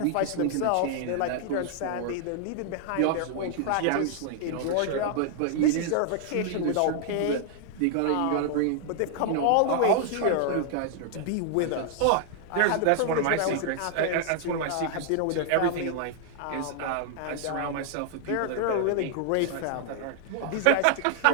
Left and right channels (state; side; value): different; both; correlation -0.01